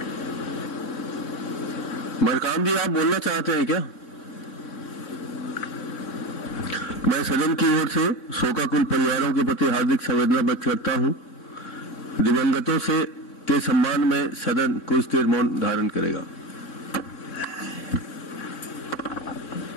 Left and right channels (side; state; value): right; late; 4.0 ms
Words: मरकाम जी, आप बोलना चाहते हैं क्या? मैं सदन की ओर से शोकाकुल परिवारों के प्रति हार्दिक संवेदना व्यक्त करता हूं। दिवंगतों के सम्मान में सदन कुछ देर मौन धारण करेगा।